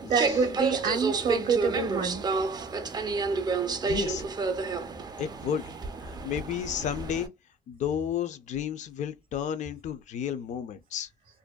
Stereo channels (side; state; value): both; normal; correlation 0.44